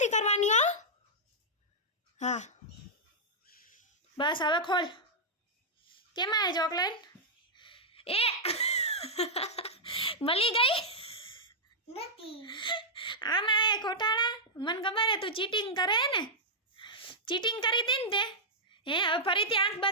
करवानी हो हाँ बस हवे खोल केम आए चॉकलेट ए मली गई नहीं आम आए खोटाड़ा मन खबर है तू चीटिंग करे ने चीटिंग करी थी ने हे હવે ફરીથી આંખ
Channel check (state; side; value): normal; both; correlation -0.09